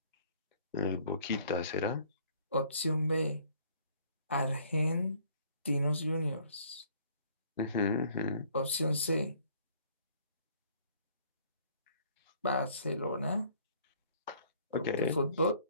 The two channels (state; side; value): inverted; both; correlation -0.58